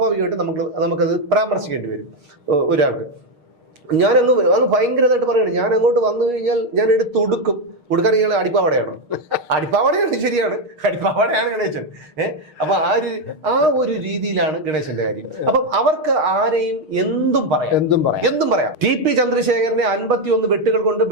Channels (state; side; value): late; left; 6.5 ms